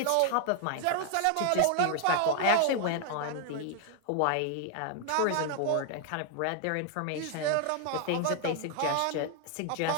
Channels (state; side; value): different; both; correlation 0.00